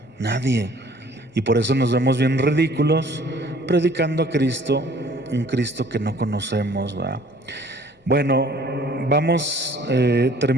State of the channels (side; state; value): both; normal; correlation 0.55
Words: nadie. Y por eso nos vemos bien ridículos predicando a Cristo, un Cristo que no conocemos, ¿verdad? Bueno, vamos